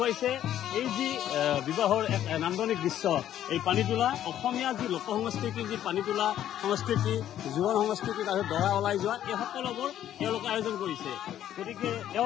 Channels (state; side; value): quieter; right; 11.4 dB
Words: এই যি বিবাহৰ এক নান্দনিক দৃশ্য, এই পানী তোলা অসমীয়া যি লোক সংস্কৃতিৰ যি পানী তোলা সংস্কৃতি, জোৰণ সংস্কৃতি, তাৰপিছত দৰা ওলাই যোৱা, এই সকলোবোৰ তেওঁলোকে আয়োজন কৰিছে। গতিকে